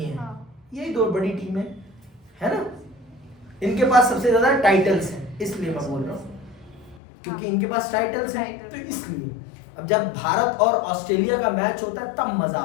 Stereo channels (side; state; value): right; drops out; at 7.0 s